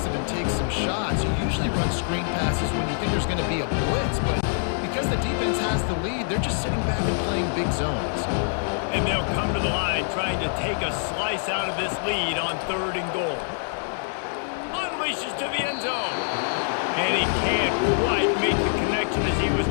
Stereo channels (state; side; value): silent; right; digital silence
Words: and take some shots. You usually run screen passes when you think there's going to be a blitz, but because the defense has the lead, they're just sitting back and playing big zones. And they'll come to the line trying to take a slice out of this lead on 3rd and goal. Unleashes to the end zone. And he can't quite make the connection as he was